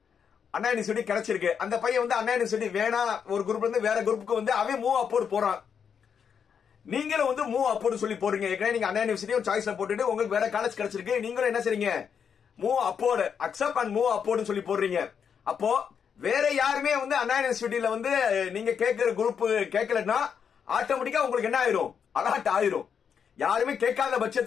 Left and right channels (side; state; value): right; quieter; 7.2 dB